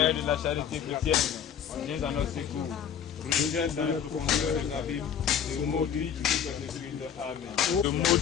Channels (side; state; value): right; quieter; 8.4 dB